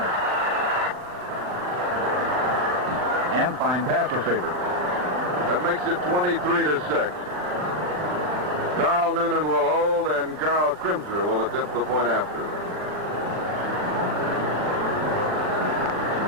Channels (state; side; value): late; left; 39 ms